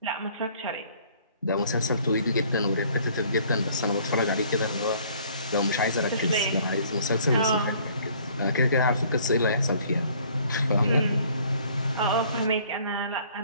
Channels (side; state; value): both; inverted; correlation -0.57